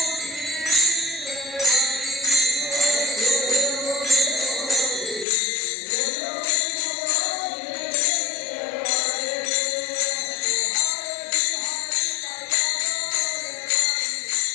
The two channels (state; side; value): drops out; right; at 5.2 s